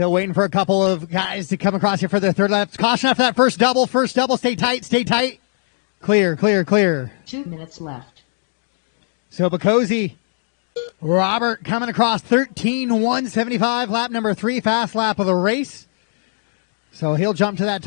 waiting for a couple of guys to come across here for the third lap. Caution after that first double. First double. Stay tight. Stay tight. Clear, clear, clear. 2 minutes left. So Bacosi, Robert coming across 13.175, lap number 3, fast lap of the race. So he'll jump to that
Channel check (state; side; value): silent; right; digital silence